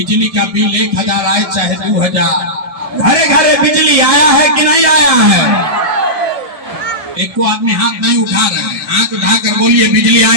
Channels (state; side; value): late; left; 1.7 ms